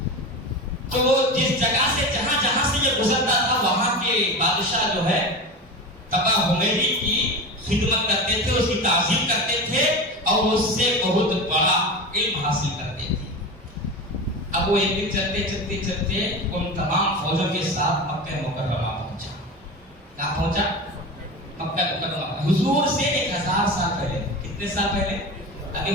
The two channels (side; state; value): both; normal; correlation 0.27